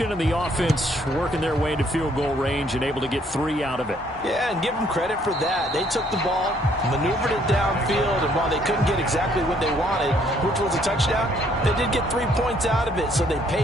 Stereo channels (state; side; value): normal; both; correlation 0.65